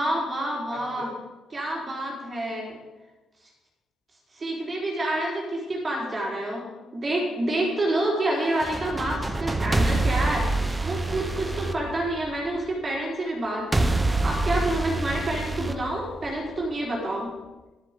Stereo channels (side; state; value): both; normal; correlation 0.86